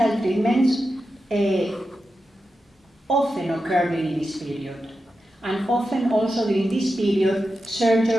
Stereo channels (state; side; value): normal; both; correlation 0.90